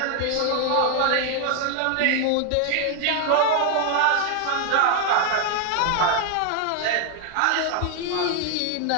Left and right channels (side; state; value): both; different; correlation 0.00